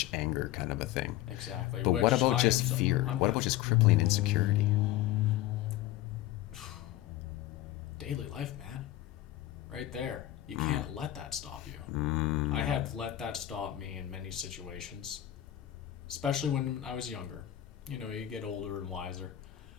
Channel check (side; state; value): right; quieter; 13.9 dB